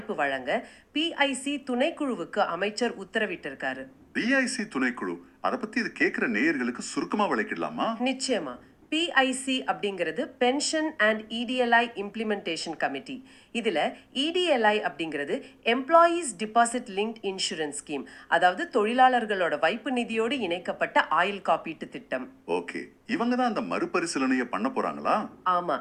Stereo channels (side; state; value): both; identical; correlation 1.00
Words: வழங்க பிஐசி துணைக்குழுவுக்கு அமைச்சர் உத்தரவிட்டிருக்காரு. பிஐசி துணைக்குழு, அதை பத்தி இது கேட்கிற நேயர்களுக்கு சுருக்கமா விளக்கிடலாமா? நிச்சயமா. பிஐசி அப்படிங்கிறது pension and EDLI implementation committee. இதுல இடிஎல்ஐ அப்படிங்கிறது employees deposit linked insurance scheme, அதாவது தொழிலாளர்களோட வைப்பு நிதியோடு இணைக்கப்பட்ட ஆயுள் காப்பீட்டு திட்டம். ஓகே, இவங்க தான் அந்த மறுபரிசீலனையை பண்ண போறாங்களா? ஆமா.